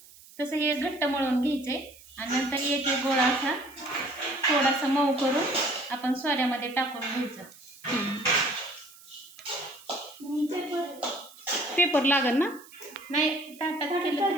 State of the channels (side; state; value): right; noise; hiss, 22 dB below the sound